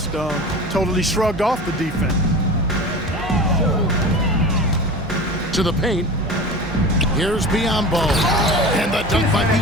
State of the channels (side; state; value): both; normal; correlation 0.33